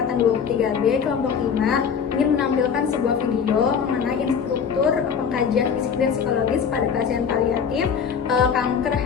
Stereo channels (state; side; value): quieter; right; 6.9 dB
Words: 23B kelompok 5 ingin menampilkan sebuah video mengenai instruktur pengkajian fisik dan psikologis pada pasien paliatif kanker